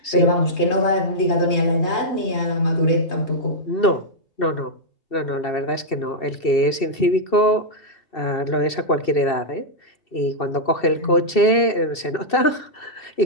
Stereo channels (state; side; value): late; right; 2.7 ms